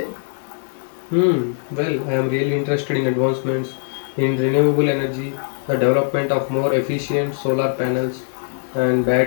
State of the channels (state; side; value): silent; right; digital silence